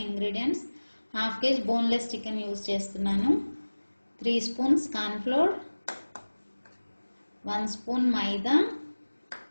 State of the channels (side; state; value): both; inverted; correlation -1.00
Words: ingredients: half KG boneless chicken use చేస్తున్నాను, 3 స్పూన్స్ కార్న్ ఫ్లోర్, 1 స్పూన్ మైదా,